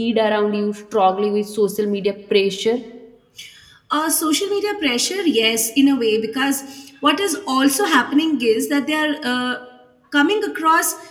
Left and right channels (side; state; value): both; identical; correlation 1.00